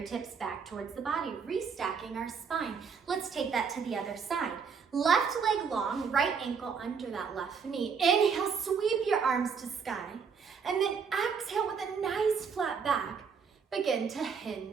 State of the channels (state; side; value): quieter; left; 6.1 dB